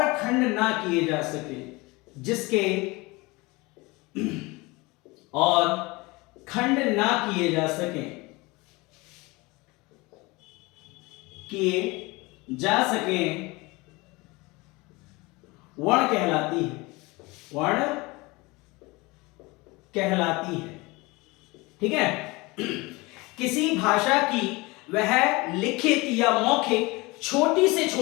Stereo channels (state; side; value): quieter; right; 23.9 dB